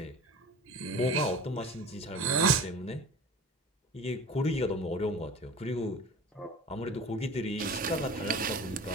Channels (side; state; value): both; normal; correlation 0.38